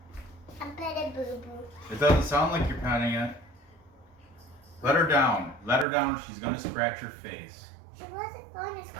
I'm petting Boo Boo. It doesn't sound like you're petting it. Let her down. Let her down or she's gonna scratch her face. She wasn't going to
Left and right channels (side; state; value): left; drops out; at 5.9 s